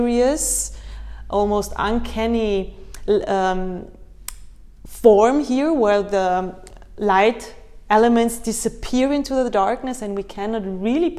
almost uncanny form here, where the light elements disappear into the darkness and we cannot really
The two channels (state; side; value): identical; both; correlation 1.00